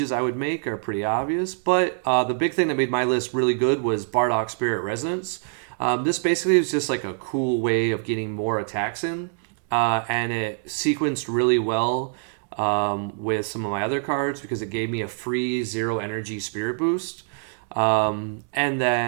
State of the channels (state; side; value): silent; left; digital silence